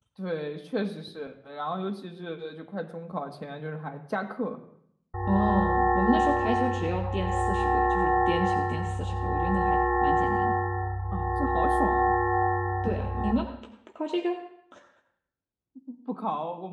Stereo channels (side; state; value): both; identical; correlation 1.00